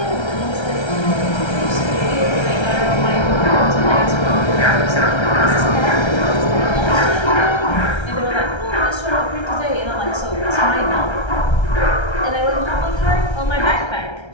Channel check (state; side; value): late; right; 1.3 ms